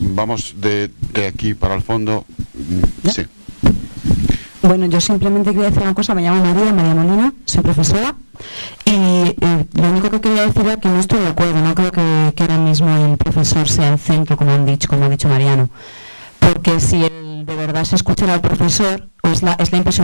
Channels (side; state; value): both; inverted; correlation -1.00